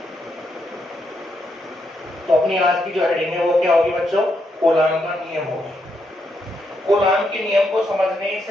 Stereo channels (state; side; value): normal; both; correlation 0.79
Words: तो अपनी आज की जो हेडिंग है वो क्या होगी बच्चों? कूलॉम का नियम होगी। कूलॉम के नियम को समझने